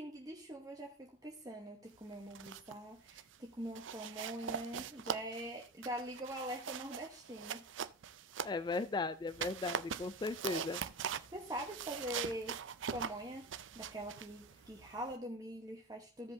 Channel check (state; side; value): normal; both; correlation 0.25